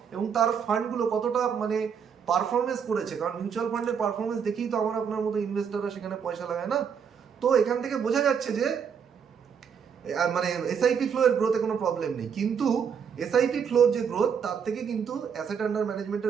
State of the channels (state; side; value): quieter; left; 7.0 dB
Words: এবং তার ফান্ডগুলো কতটা মানে পারফরমেন্স করেছে। কারণ মিউচুয়াল ফান্ডের পারফরমেন্স দেখেই তো আমার আপনার মতো ইনভেস্টাররা সেখানে পয়সা লাগায় না। তো এখান থেকে বোঝা যাচ্ছে যে মানে এসআইপি ফ্লো এর গ্রোথে কোনো প্রবলেম নেই, কিন্তু এসআইপি ফ্লোর যে গ্রোথ, তার থেকে কিন্তু অ্যাসেট আন্ডার